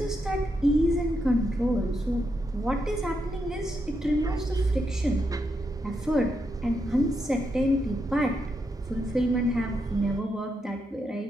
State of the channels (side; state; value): both; normal; correlation 0.82